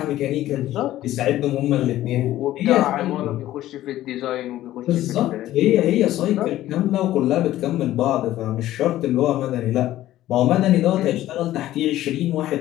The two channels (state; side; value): quieter; right; 14.3 dB